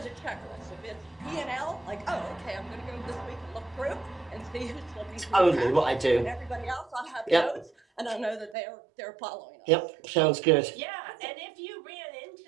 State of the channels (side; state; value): left; drops out; at 8.6 s